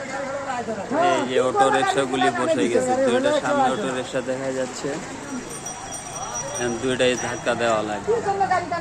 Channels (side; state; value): both; identical; correlation 1.00